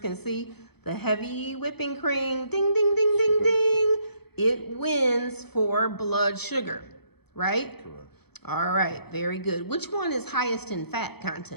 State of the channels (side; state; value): right; late; 0.97 ms